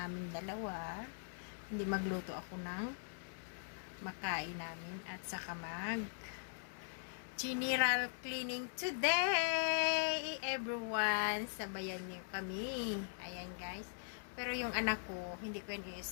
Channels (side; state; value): right; silent; digital silence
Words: dalawa. Hindi magluto ako ng makain namin at saka general cleaning today everyone, sabayan niyo kami. Ayan guys, pero yung anak ko hindi ko yun